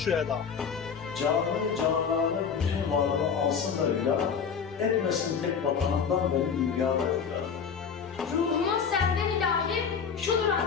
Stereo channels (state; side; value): quieter; right; 6.5 dB